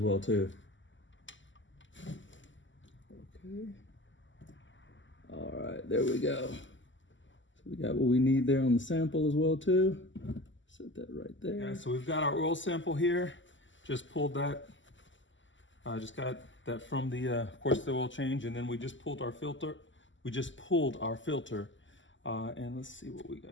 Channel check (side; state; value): right; late; 0.55 ms